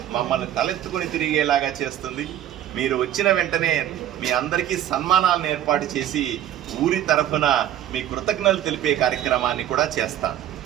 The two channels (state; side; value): quieter; left; 11.6 dB